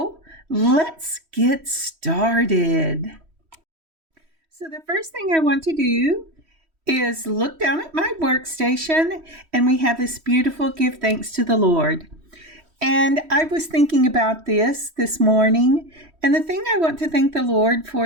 let's get started. So the first thing I want to do is look down at my workstation, and we have this beautiful Give Thanks to the Lord. And I was thinking about this morning, and the thing I want to thank the Lord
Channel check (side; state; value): left; late; 3.1 ms